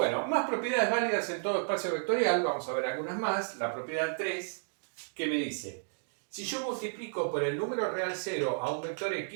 más propiedades válidas en todo espacio vectorial, vamos a ver algunas más. La propiedad 3, que me dice, si yo multiplico por el número real 0 a un vector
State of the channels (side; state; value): left; silent; digital silence